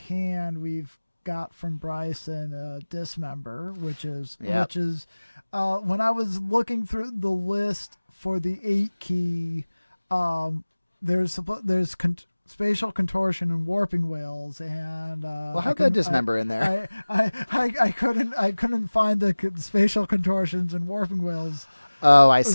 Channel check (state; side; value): inverted; both; correlation -1.00